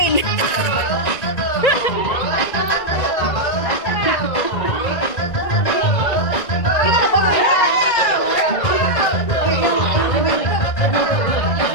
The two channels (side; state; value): right; late; 1.9 ms